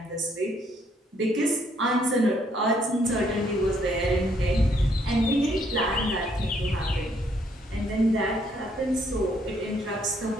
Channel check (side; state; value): both; normal; correlation 0.69